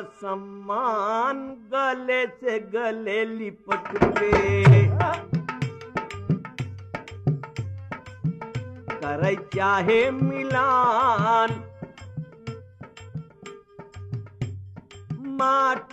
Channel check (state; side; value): identical; both; correlation 1.00